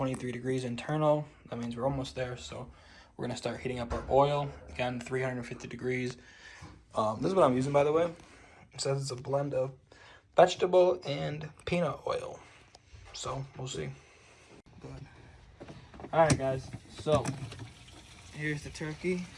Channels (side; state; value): both; identical; correlation 1.00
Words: degrees internal. That means we're almost there, so we're gonna start heating up our oil. Again, 350 degrees. This is what I'm using, by the way. It says it's a blend of vegetable and peanut oil. So, we'll see. Alright guys, so here's the turkey.